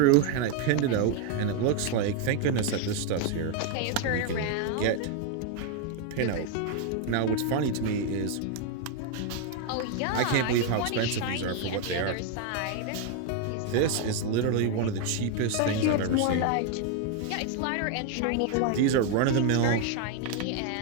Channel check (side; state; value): both; different; correlation 0.01